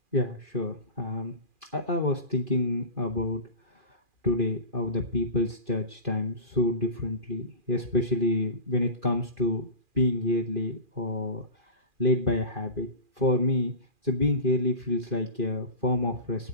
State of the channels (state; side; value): late; left; 2.4 ms